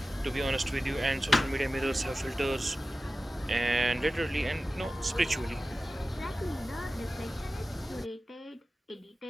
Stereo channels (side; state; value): both; normal; correlation 0.95